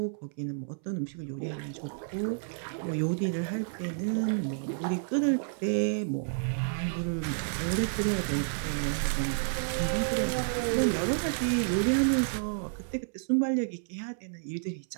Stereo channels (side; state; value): left; silent; 58 dB below the other